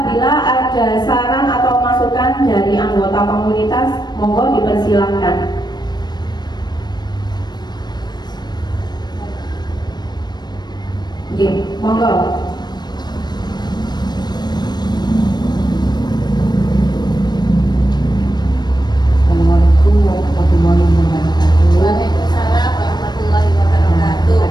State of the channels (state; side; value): late; right; 0.20 ms